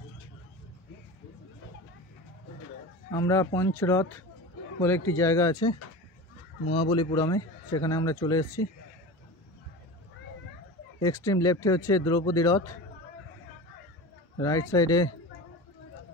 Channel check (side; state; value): both; normal; correlation 0.31